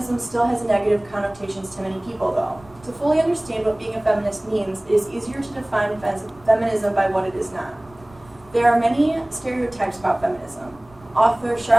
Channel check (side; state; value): right; noise; rumble, 25 dB below the sound